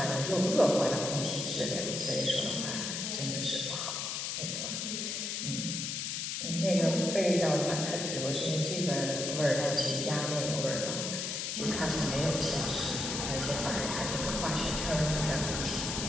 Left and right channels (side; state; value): left; noise; hiss, 3 dB below the sound